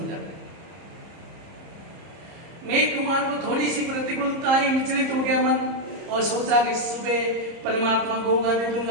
जाता है। मेघ कुमार को थोड़ी सी प्रतिकूलता ही, विचलित हो गया मन और सोचा कि सुबह परमात्मा को होगा दे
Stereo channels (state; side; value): late; left; 30 ms